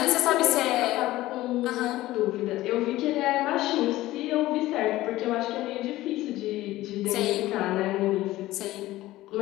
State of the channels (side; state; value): right; quieter; 16.6 dB